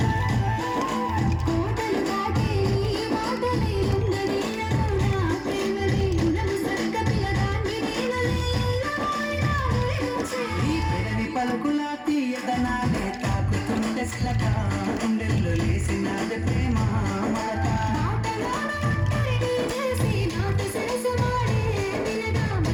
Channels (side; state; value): both; identical; correlation 1.00